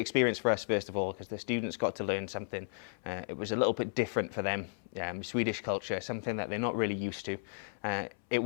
for us, first of all, because the students got to learn something. It was a little bit different for them, Swedish culture, something that they're not really used to. It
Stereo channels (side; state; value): right; silent; 55 dB below the other